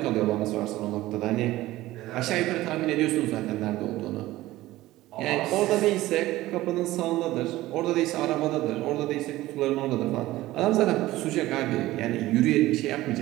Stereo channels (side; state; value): left; quieter; 16.8 dB